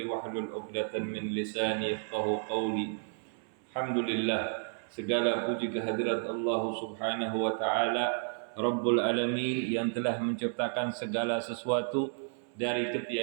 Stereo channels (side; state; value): left; silent; 56 dB below the other